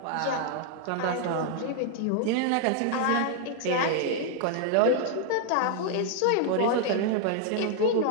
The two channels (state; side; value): different; both; correlation 0.00